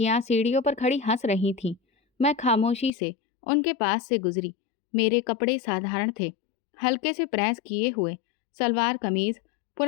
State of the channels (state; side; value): drops out; right; at 2.9 s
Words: सीढ़ियों पर खड़ी हंस रही थीं। मैं खामोशी से उनके पास से गुजरी। मेरे कपड़े साधारण थे, हल्के से प्रेस किए हुए सलवार कमीज,